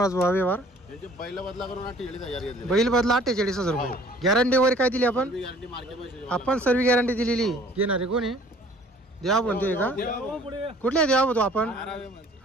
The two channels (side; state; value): both; normal; correlation 0.53